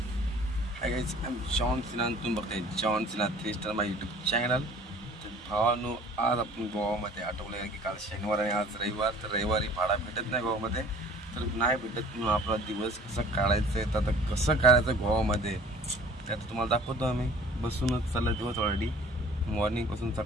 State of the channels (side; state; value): both; normal; correlation 0.50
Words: Hi guys, I am John Sinha. तुम्ही बघताय जॉन सिन्हा 3 स्टार माझ्या यूट्यूब चॅनल. तर भावानो, आज आपण गोवामध्ये आठवलं की काल शनिवार आणि आज रविवार. तर रविवारी भाडा भेटत नाही गोवामध्ये. तर नाही भेटत म्हणून आपला दिवस कसं काढायचं आहे. तर आता कसं काढायचं गोवामध्ये ते आता तुम्हाला दाखवतो. आम्ही बसूनच चालला दिवस ऑलरेडी. मॉर्निंगपासून